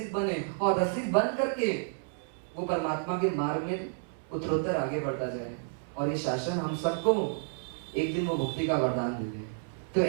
बने और रसिक बन करके वो परमात्मा के मार्ग में उत्तरोत्तर आगे बढ़ता जाए और ये शासन हम सबको एक दिन वो मुक्ति का वरदान दे दे। तो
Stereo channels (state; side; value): silent; left; 57 dB below the other